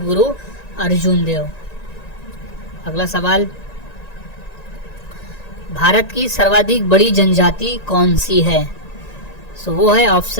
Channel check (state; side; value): late; right; 1.9 ms